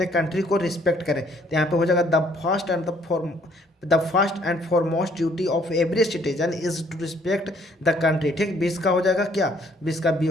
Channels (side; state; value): both; normal; correlation 0.63